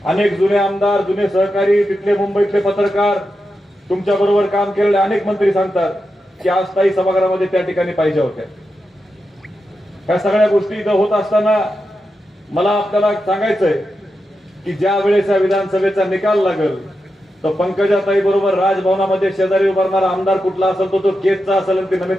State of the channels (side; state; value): both; normal; correlation 0.88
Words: अनेक जुने आमदार, जुने सहकारी, तिथले मुंबईतले पत्रकार, तुमच्या बरोबर काम केलेले अनेक मंत्री सांगतात की आज ताई सभागृहामध्ये त्या ठिकाणी पाहिजे होत्या. ह्या सगळ्या गोष्टी इथं होत असताना मला आपल्याला सांगायचंय की ज्या वेळेस या विधानसभेचा निकाल लागेल तर पंकजाताई बरोबर राजभवनामध्ये शेजारी उभारणारा आमदार कुठला असेल तो केजचा असेल आणि ती